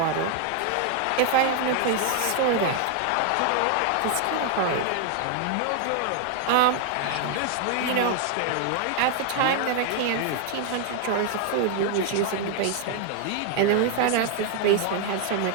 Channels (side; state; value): both; different; correlation 0.00